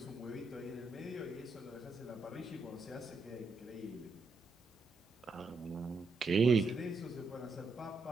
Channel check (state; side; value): quieter; left; 3.4 dB